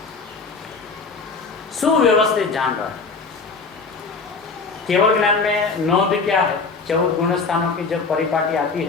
सुव्यवस्थित जान रहा है। केवल ज्ञान में नोंद क्या है? 14 गुण स्थानों की जब परिपाटी आती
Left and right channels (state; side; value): quieter; right; 4.5 dB